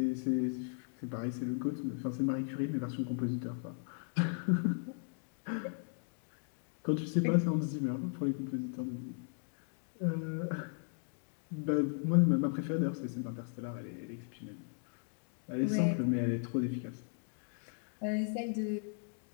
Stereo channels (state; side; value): silent; right; 53 dB below the other